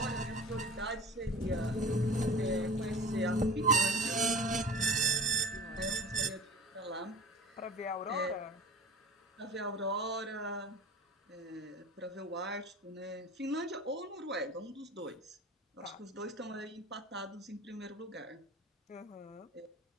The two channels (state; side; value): normal; both; correlation 0.37